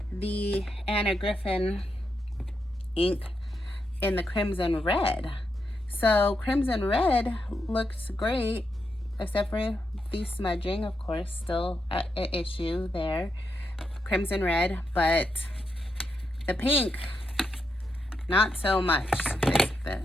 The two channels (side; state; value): both; normal; correlation 0.84